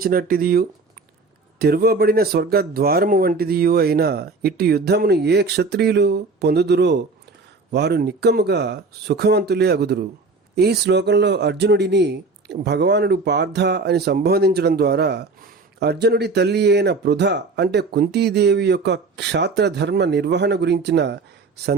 తెరవబడిన స్వర్గద్వారము వంటిదియు అయిన ఇట్టి యుద్ధమును ఏ క్షత్రియులు పొందుదురో వారు నిక్కముగా సుఖవంతులే అగుదురు. ఈ శ్లోకంలో అర్జునుడిని భగవానుడు పార్థ అని సంబోధించడం ద్వారా అర్జునుడి తల్లి అయిన పృథ అంటే కుంతీదేవి యొక్క క్షాత్రధర్మ నిర్వహణ గురించిన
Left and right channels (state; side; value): quieter; left; 3.9 dB